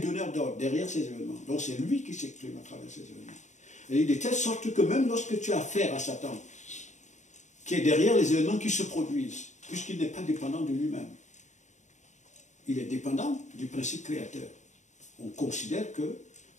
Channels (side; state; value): right; late; 0.34 ms